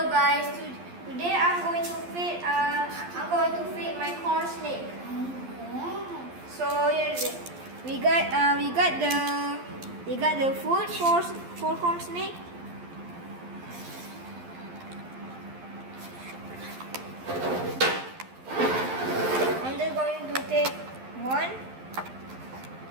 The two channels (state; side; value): late; left; 12 ms